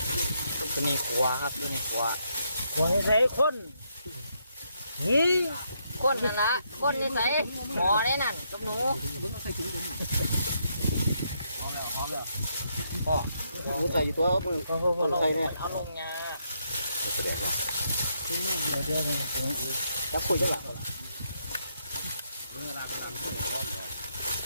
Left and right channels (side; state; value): both; inverted; correlation -0.77